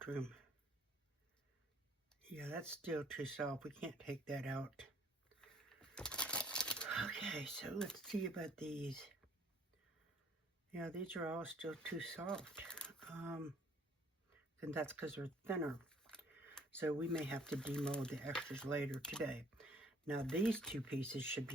room. Yeah, that's still too soft. We can't take that out. Okay, so let's see about these. Yeah, these are all still too soft. And that's because they're thinner. So we may have to demold the extras later today. Now these two pieces should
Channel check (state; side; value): normal; both; correlation 0.59